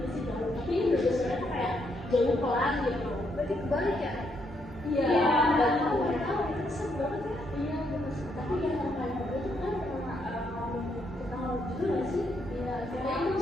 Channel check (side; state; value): both; normal; correlation 0.76